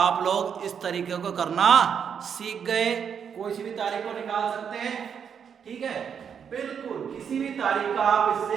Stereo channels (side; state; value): left; quieter; 7.4 dB